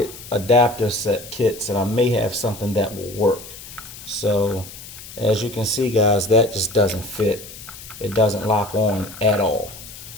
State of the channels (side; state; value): left; noise; hiss, 15 dB below the sound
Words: adapter set kits, and I may have something that will work. So as you can see, guys, that just doesn't fit. It doesn't lock on at all.